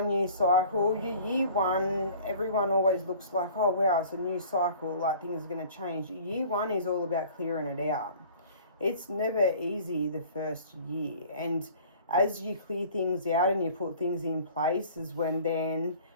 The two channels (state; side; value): inverted; both; correlation -0.47